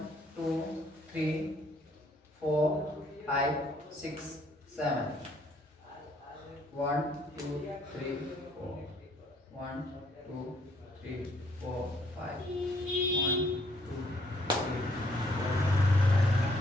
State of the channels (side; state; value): both; normal; correlation 0.66